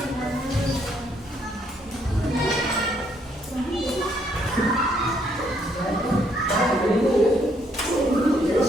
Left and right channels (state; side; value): normal; both; correlation 0.70